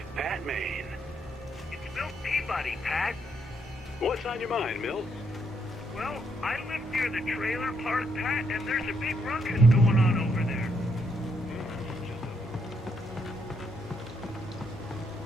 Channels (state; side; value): normal; both; correlation 0.76